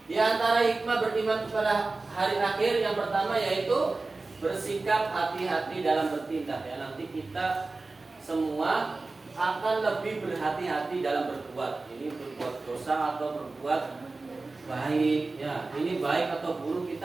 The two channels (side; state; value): left; quieter; 3.5 dB